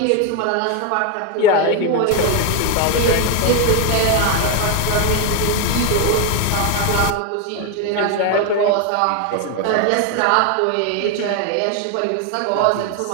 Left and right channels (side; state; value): both; different; correlation 0.01